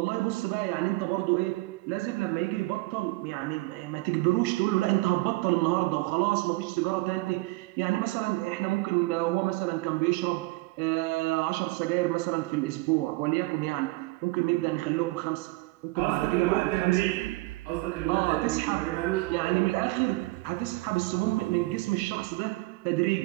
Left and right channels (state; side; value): quieter; left; 21.9 dB